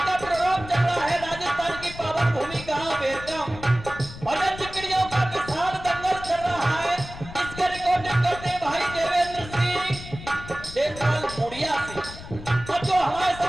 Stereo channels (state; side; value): noise; left; rumble, 14 dB below the sound